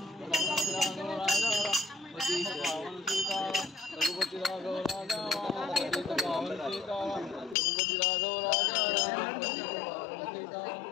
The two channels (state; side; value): drops out; right; at 7.6 s